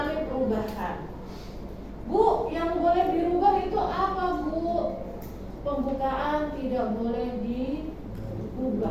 perubahan. Bu, yang boleh dirubah itu apa, Bu? Pembukaan tidak boleh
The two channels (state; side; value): identical; both; correlation 1.00